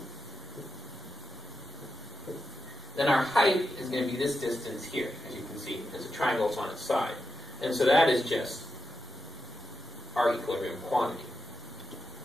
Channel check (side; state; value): both; normal; correlation 0.88